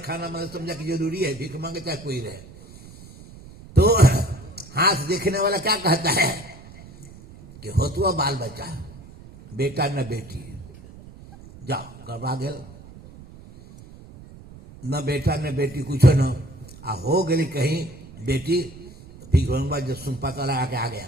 मतलब समझा कि जरूरी है, भीख मांगे चाहे कोई रहे। तो हाथ देखने वाला क्या कहता है कि होतुआ बाल बच्चा, बेटा न बेटी, जाओ गड़बड़ा गल, न बेटा न बेटी कुछ न आ हो गई कहीं बेटी तो भीख मंगवा जब सुन पता लगा के आ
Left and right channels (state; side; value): noise; right; rumble, 18 dB below the sound